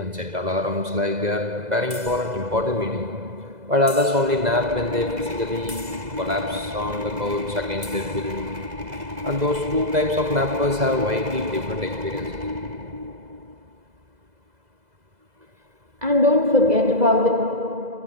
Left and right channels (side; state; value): left; late; 2.0 ms